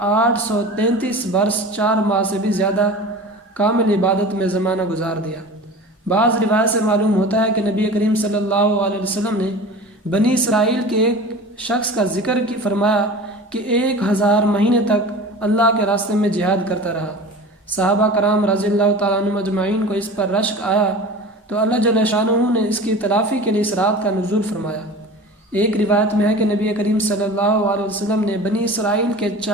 833 برس 4 ماہ سے بھی زیادہ کامل عبادت میں زمانہ گزار دیا۔ بعض روایت سے معلوم ہوتا ہے کہ نبی کریم صلی اللہ علیہ وسلم نے بنی اسرائیل کے ایک شخص کا ذکر فرمایا کہ 1000 مہینے تک اللہ کے راستے میں جہاد کرتا رہا۔ صحابہ کرام رضی اللہ تعالیٰ عنہم اجمعین کو اس پر رشک آیا تو اللہ جل شانہ نے اس کی تلافی کے لیے اس رات کا نزول فرمایا۔ ایک روایت میں ہے کہ نبی کریم صلی اللہ علیہ وسلم نے بنی اسرائیل کے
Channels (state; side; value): normal; both; correlation 0.36